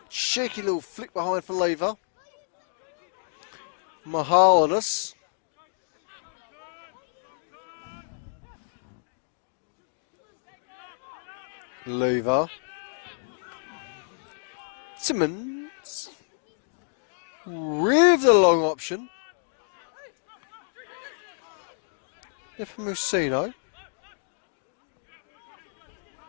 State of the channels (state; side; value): silent; right; digital silence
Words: cheeky little flick behind for Lever. Mahalanis. Lever. Timmins with the long option. If Musino.